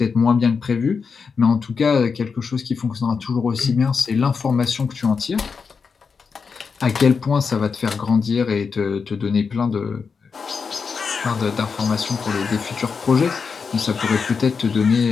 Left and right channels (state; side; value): quieter; right; 5.4 dB